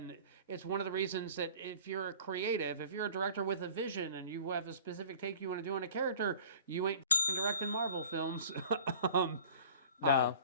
it's one of the reasons that if you're a creative, if you're a director with a vision and you have a specific take you want to do on a character, you ain't directing Marvel films. No,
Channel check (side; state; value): both; inverted; correlation -0.46